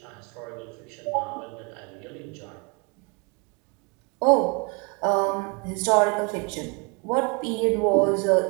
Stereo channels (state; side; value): quieter; left; 31.7 dB